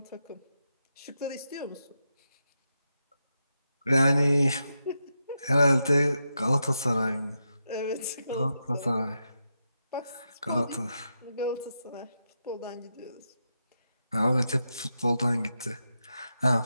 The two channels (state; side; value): inverted; both; correlation -0.86